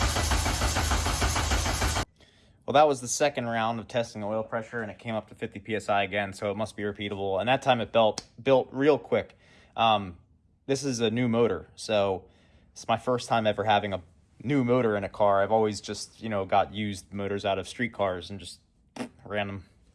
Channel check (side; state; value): both; identical; correlation 1.00